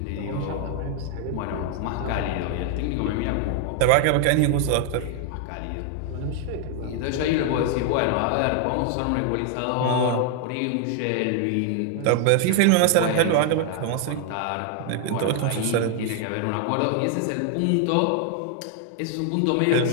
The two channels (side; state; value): both; different; correlation 0.00